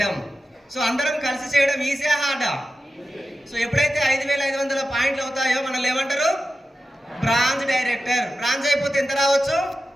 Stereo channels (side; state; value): both; normal; correlation 0.92